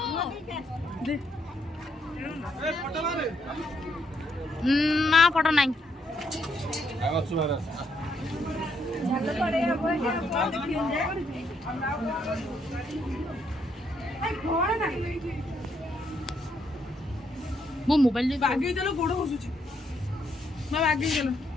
ना फोटो नहीं मो मोबाइल आगे चलो गोड़ घुसुची मैं आगे चलो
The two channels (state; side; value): normal; both; correlation 0.74